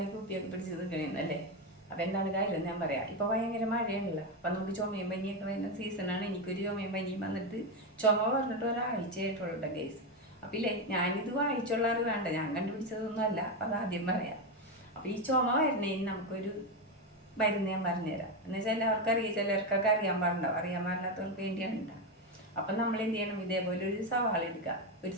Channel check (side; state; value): both; normal; correlation 0.10